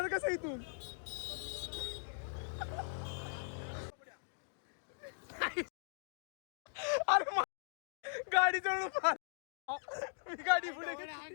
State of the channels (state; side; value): silent; right; digital silence